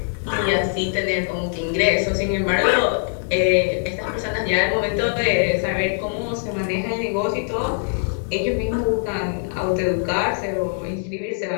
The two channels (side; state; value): right; silent; digital silence